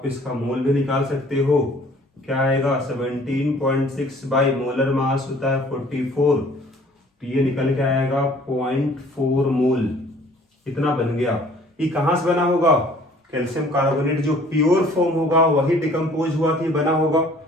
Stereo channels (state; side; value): normal; both; correlation 0.54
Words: इसका मोल भी निकाल सकते हो, क्या आएगा 17.6 बाई मोलर मास होता है 44, तो ये निकल के आएगा 0.4 मोल। इतना बन गया। ये कहाँ से बना होगा? कैल्शियम कार्बोनेट जो प्योर फॉर्म होगा वही डिकम्पोज हुआ कि बना होगा।